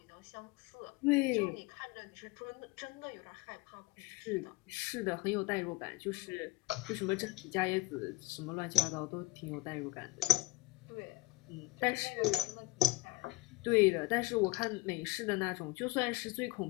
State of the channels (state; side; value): quieter; right; 20.5 dB